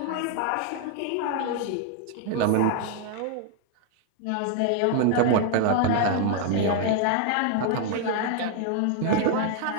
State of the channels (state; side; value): different; both; correlation 0.00